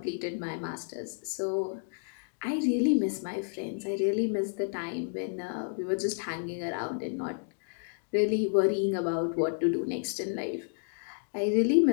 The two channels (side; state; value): right; silent; digital silence